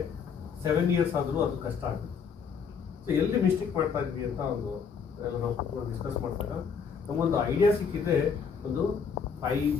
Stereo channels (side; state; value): right; quieter; 6.2 dB